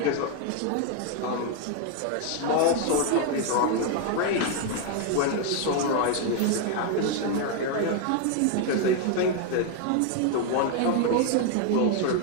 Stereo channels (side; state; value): both; different; correlation 0.00